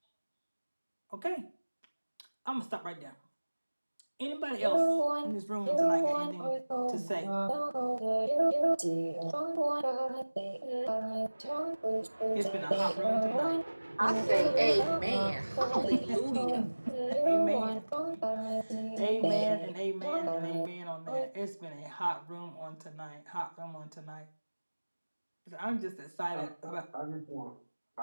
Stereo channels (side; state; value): both; inverted; correlation -1.00